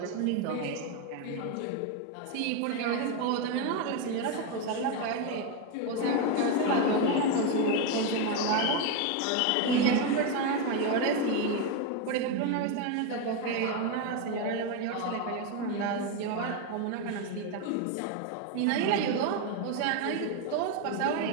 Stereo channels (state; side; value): different; both; correlation 0.02